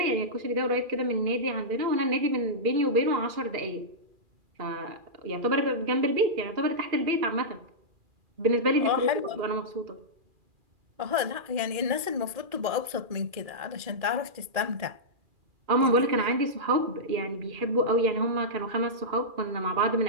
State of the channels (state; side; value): late; left; 2.4 ms